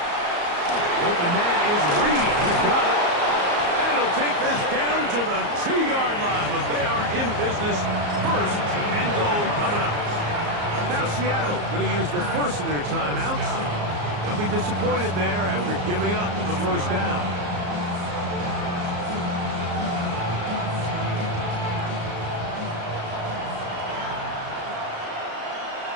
Open man is Reed. He's got it. And he'll take this down to the 2-yard line, but they are in business. 1st and goal coming up. Now Seattle going to use the first of their timeouts. They'll be disappointed there after giving up the 1st down.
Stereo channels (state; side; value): late; left; 34 ms